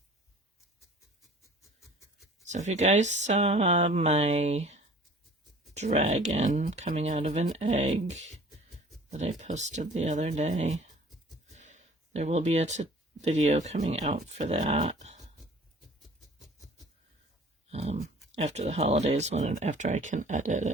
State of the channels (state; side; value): normal; both; correlation 0.49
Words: So if you guys saw my dragon coming out of an egg that I posted the other day, there will be a video coming out for that after the holidays, after I can edit